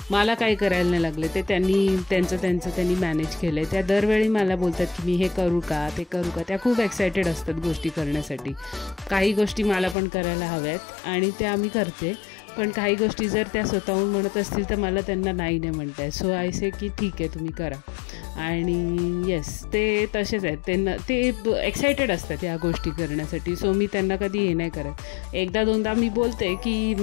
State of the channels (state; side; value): drops out; right; at 10.0 s